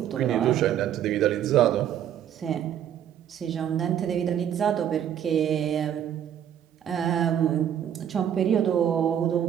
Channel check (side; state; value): left; quieter; 9.9 dB